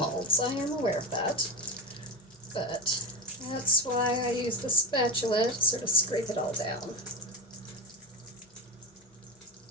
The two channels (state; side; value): normal; both; correlation 0.18